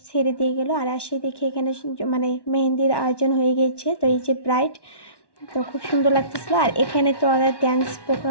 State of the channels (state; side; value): late; right; 1.1 ms